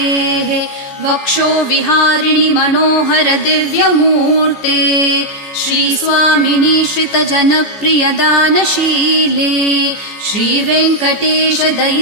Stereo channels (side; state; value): right; late; 14 ms